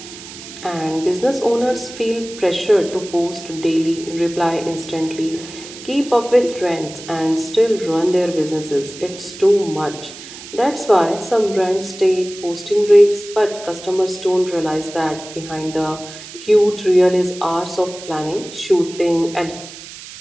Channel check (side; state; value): right; noise; hiss, 15 dB below the sound